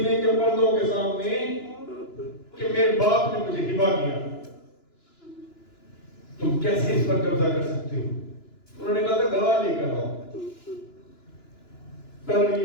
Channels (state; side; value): late; right; 2.9 ms